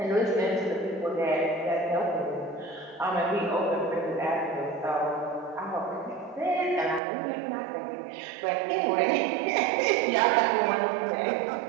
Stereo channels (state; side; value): drops out; left; at 7.0 s